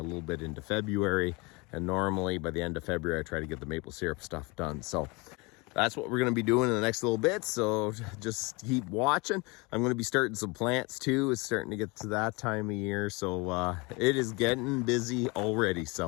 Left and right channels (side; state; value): right; quieter; 27.2 dB